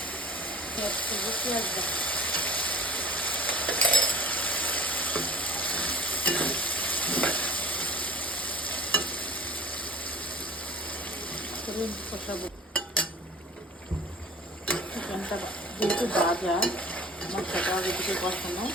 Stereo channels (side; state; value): both; normal; correlation 0.42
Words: পেঁয়াজ করবো, পেঁয়াজ কষাবো। চিকেনটা যেহেতু ভাজা, মশলাটা আগে থেকে কষানো,